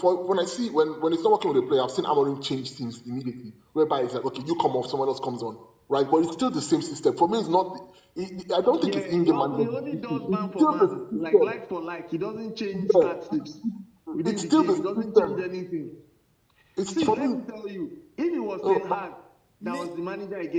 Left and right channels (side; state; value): both; identical; correlation 1.00